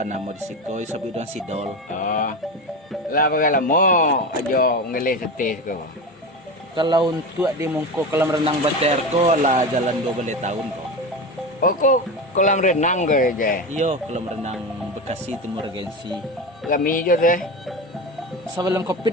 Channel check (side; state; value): both; normal; correlation 0.23